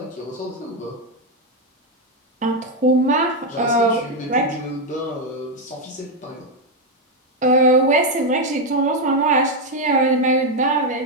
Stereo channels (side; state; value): both; normal; correlation 0.04